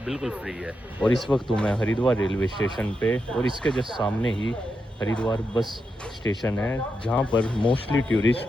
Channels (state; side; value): normal; both; correlation 0.86